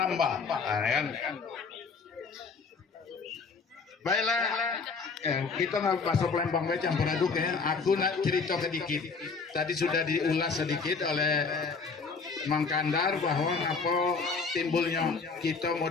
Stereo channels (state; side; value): quieter; right; 4.8 dB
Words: Nah, kan? Baiklah, kita nggak masuk lembang baca campur aduk ya. Aku nak cerita sedikit. Tadi sudah diulas sedikit oleh Mang Kandar bahwa apa timbulnya kita